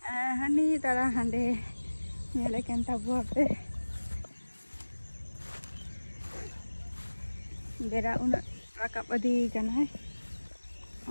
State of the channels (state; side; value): inverted; both; correlation -1.00